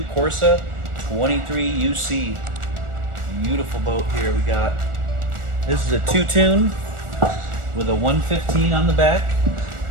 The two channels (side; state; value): left; late; 1.4 ms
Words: Corsa 23UC. Beautiful boat here we got. This is a two-tune with a 115 on the back.